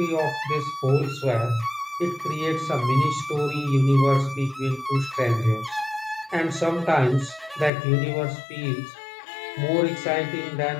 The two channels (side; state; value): right; drops out; at 7.7 s